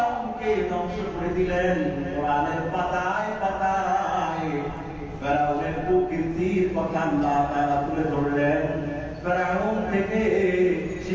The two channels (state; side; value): identical; both; correlation 1.00